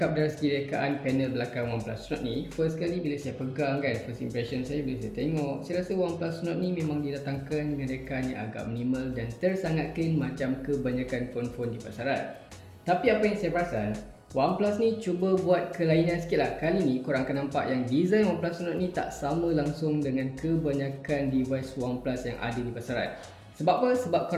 dari segi rekaan panel belakang OnePlus Nord ni, first kali bila saya pegang kan, first impression saya bila saya tengok, saya rasa OnePlus Nord ni memang didatangkan dengan rekaan yang agak minimal dan tersangat clean macam kebanyakan phone-phone di pasaran. Tapi apa yang saya perasan, OnePlus ni cuba buat kelainan sikit lah. Kali ni korang akan nampak yang design OnePlus Nord ni tak sama langsung dengan kebanyakan device OnePlus yang ada di pasaran. Sebab apa? Sebab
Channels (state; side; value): identical; both; correlation 1.00